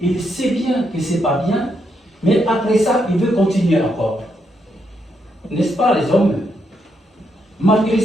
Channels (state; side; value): normal; both; correlation 0.79